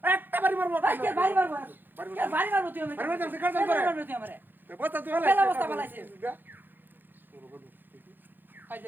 একটা বাড়ি মারবো ভাই কে বাড়ি মারবো কে বাড়ি মারবো তুই আমাকে বাড়ি মারবো তুই কাজ করে মারবো তুই আমারে বস্তা তুই পেলা হলাই বস্তা বলাইছি ভাই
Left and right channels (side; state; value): left; late; 0.092 ms